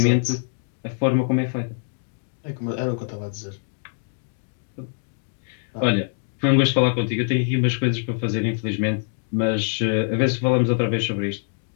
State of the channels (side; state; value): right; silent; digital silence